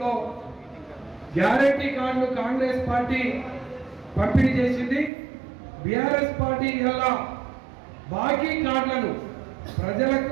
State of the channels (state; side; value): drops out; left; at 5.1 s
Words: గ్యారంటీ కార్డులు కాంగ్రెస్ పార్టీ పంపిణీ చేసింది. బీఆర్ఎస్ పార్టీ ఇలా బాకీ కార్డులను